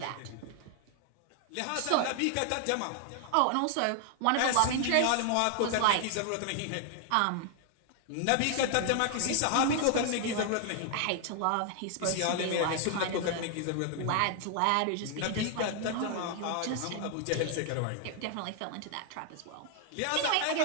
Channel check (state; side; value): different; both; correlation 0.00